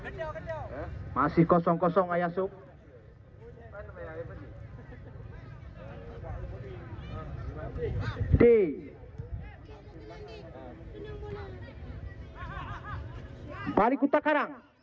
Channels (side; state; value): both; identical; correlation 1.00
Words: Masih 0-0 Ayasuk. D. Balik Kuta Karang,